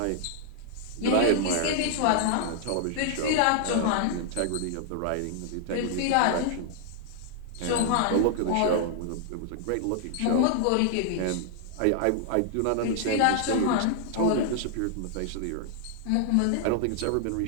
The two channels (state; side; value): different; both; correlation -0.01